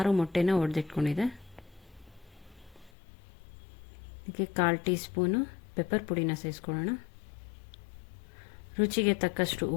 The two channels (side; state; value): right; drops out; at 2.9 s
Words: ಮೊಟ್ಟೆನ ಒಡೆದಿಟ್ಕೊಂಡಿದೆ. ಇದಕ್ಕೆ 1/4 ಟೀ ಸ್ಪೂನು ಪೆಪ್ಪರ್ ಪುಡಿನ ಸೇರಿಸ್ಕೊಳ್ಳೋಣ. ರುಚಿಗೆ ತಕ್ಕಷ್ಟು